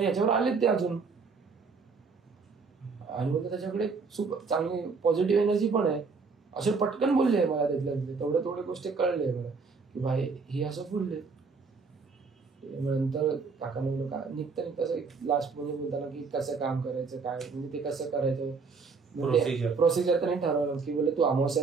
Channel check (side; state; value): left; quieter; 4.7 dB